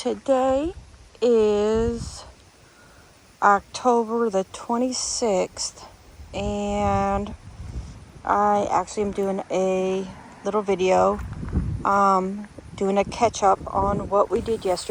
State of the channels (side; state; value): both; identical; correlation 1.00